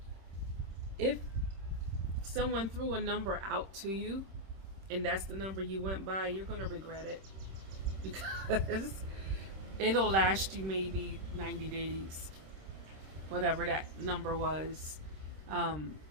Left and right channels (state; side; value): late; left; 26 ms